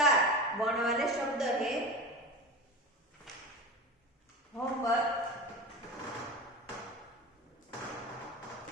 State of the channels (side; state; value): both; normal; correlation 0.29